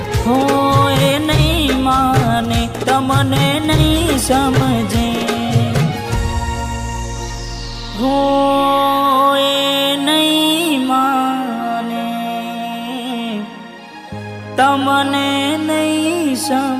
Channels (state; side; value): identical; both; correlation 1.00